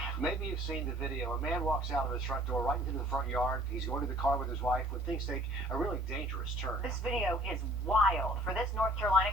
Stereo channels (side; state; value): both; normal; correlation 0.55